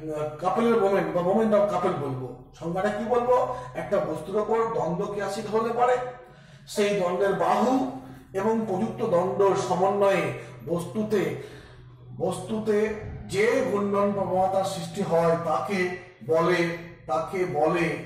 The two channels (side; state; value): both; identical; correlation 1.00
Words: কাপলের মোমেন্ট বা মোমেন্ট অফ কাপল বলবো। সংজ্ঞাটা কি বলবো, একটা বস্তুর ওপর দ্বন্দ্ব ক্রিয়াশীল হলে পারে সেই দ্বন্দ্বের বাহু এবং প্রযুক্ত দ্বন্দ্বর সমন্বয়ে বস্তুতে যে ঘূর্ণন প্রবণতার সৃষ্টি হয় তাকে বলে